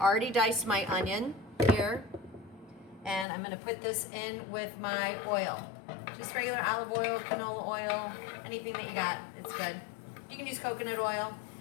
diced my onion here, and I'm going to put this in with my oil. Just regular olive oil, canola oil, anything that you got, it's good. You can use coconut oil.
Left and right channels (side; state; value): right; drops out; at 3.2 s